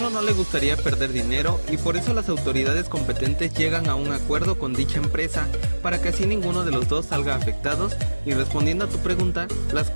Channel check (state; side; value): inverted; both; correlation -1.00